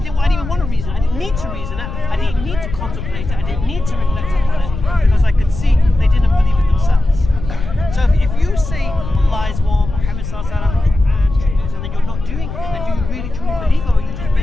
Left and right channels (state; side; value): noise; left; rumble, 8 dB below the sound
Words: even want to reason. I didn't need to reason it. I didn't need to contemplate it. I didn't need to reflect upon it because I could see they didn't believe it themselves. So if you say Allah is one, Muhammad sallallahu alaihi wasallam, and then you're not doing it, then do you really truly believe, or are you just